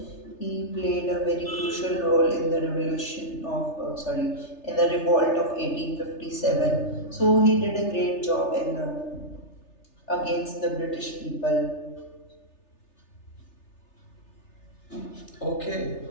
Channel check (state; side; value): late; right; 3.3 ms